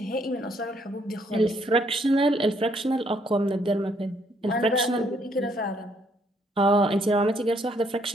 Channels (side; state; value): both; normal; correlation 0.69